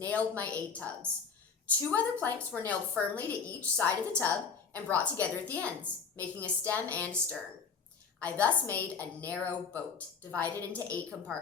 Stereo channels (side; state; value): right; quieter; 5.8 dB